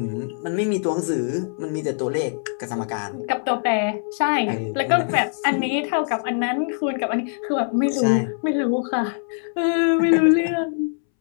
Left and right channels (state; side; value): silent; right; 64 dB below the other